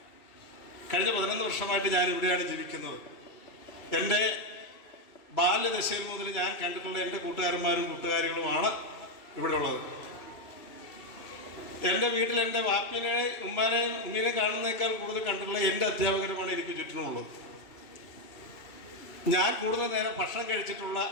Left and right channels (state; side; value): late; right; 2.9 ms